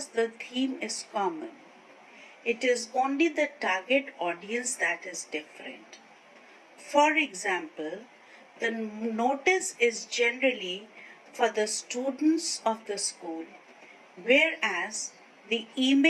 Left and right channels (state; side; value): identical; both; correlation 1.00